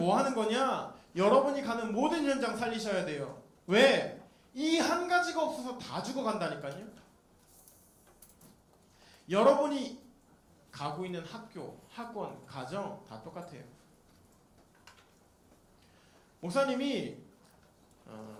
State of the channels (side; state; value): both; identical; correlation 1.00